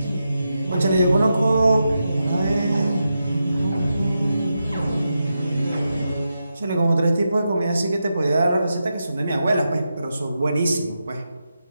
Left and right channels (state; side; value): inverted; both; correlation -0.87